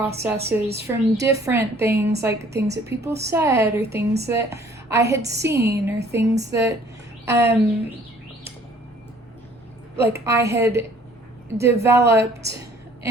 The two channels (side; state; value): both; normal; correlation 0.56